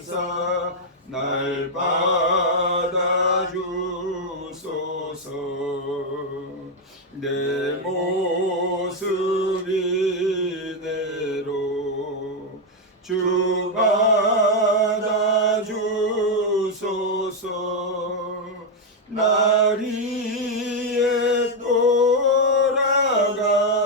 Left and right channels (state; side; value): normal; both; correlation 0.02